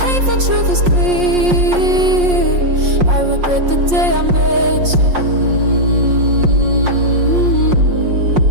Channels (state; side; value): late; left; 5.6 ms